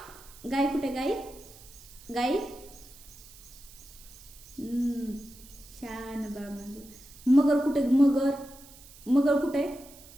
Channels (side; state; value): right; noise; hiss, 21 dB below the sound